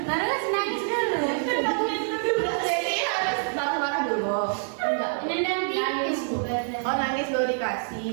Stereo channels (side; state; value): left; silent; 58 dB below the other